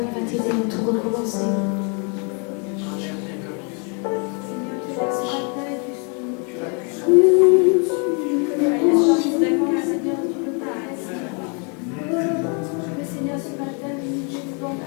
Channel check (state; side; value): quieter; right; 36.7 dB